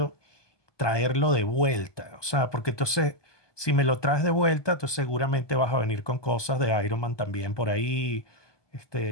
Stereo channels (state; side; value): late; right; 1.2 ms